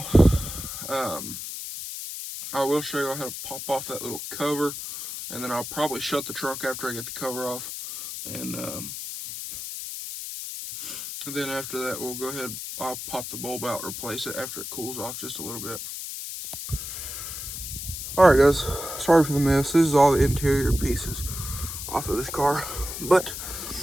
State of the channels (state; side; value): noise; left; hiss, 7 dB below the sound